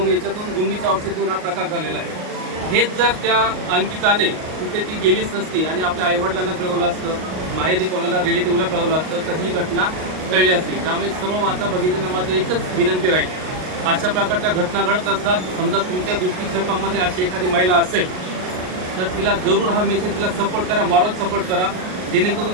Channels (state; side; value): late; left; 38 ms